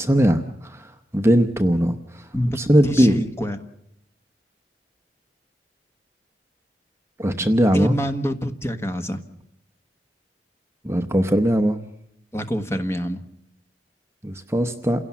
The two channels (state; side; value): normal; both; correlation 0.90